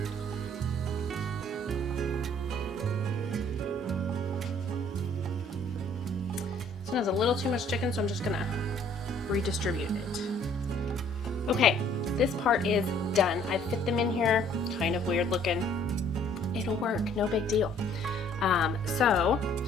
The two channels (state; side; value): normal; both; correlation 0.59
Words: This one has a little too much chicken, so I'm just gonna redistribute it. Okay, this part is done. I've fit them in here, kind of weird looking. It'll work, no big deal. So